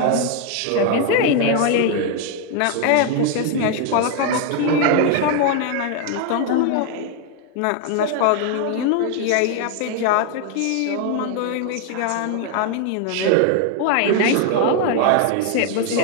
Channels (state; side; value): different; both; correlation 0.01